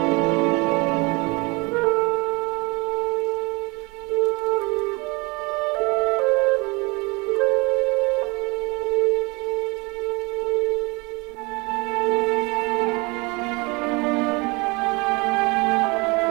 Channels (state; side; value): quieter; left; 27.0 dB